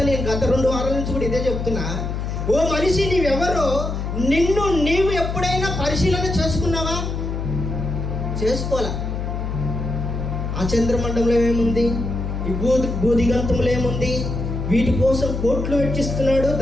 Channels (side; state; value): left; noise; hum, 3 dB below the sound